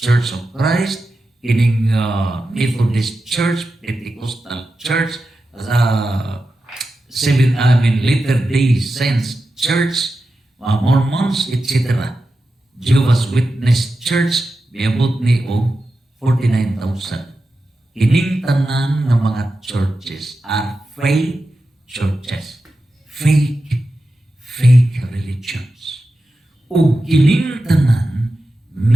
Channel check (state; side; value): normal; both; correlation 0.91